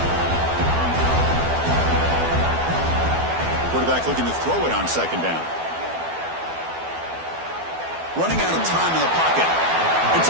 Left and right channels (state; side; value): late; left; 12 ms